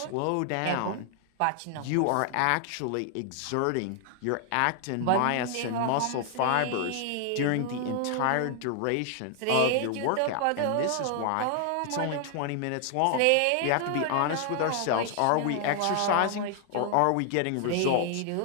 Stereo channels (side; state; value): both; different; correlation 0.00